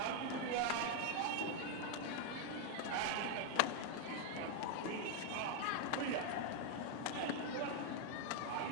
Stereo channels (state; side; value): different; both; correlation 0.00